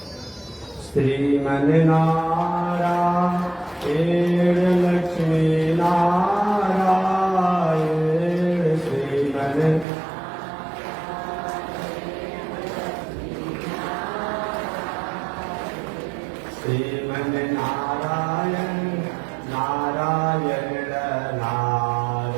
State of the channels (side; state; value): left; drops out; at 9.9 s